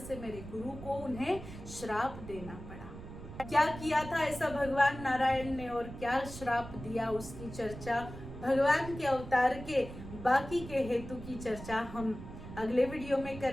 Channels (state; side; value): noise; right; rumble, 12 dB below the sound